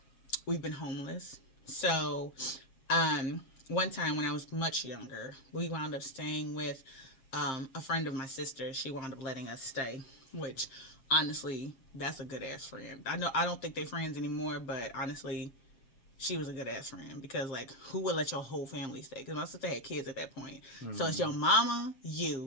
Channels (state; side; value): late; right; 7.6 ms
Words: We've been homeless. So, one time when I was much younger, we wound up staying with a friend of my sister. She wound up letting us stay, which honestly, that's a good ass friend. I don't think they're friends anymore, but honestly, she was a good ass friend because who would let your whole family stay? Because my sister had kids at that point. Mm-hmm. So it's your mama,